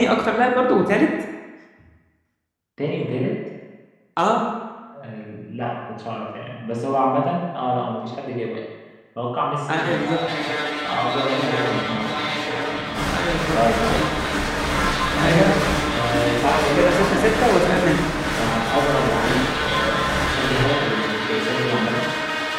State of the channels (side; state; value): both; identical; correlation 1.00